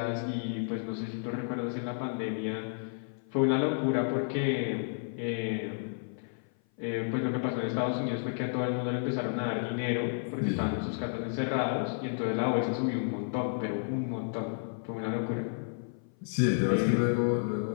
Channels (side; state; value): right; silent; 56 dB below the other